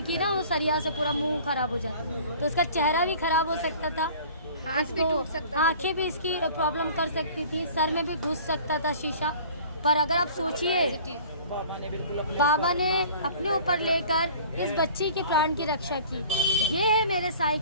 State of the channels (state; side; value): inverted; both; correlation -0.46